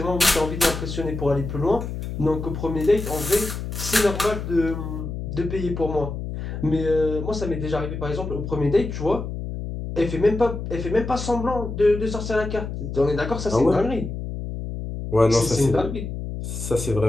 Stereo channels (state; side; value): noise; left; hum, 6 dB below the sound